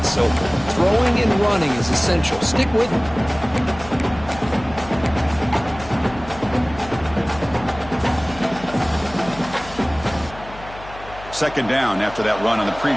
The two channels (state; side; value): noise; left; hum, 16 dB below the sound